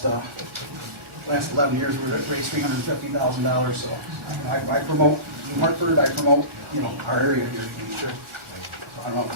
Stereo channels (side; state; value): left; late; 1.4 ms